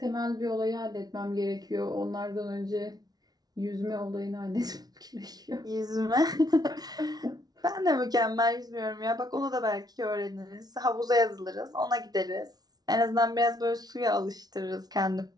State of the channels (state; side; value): late; left; 0.19 ms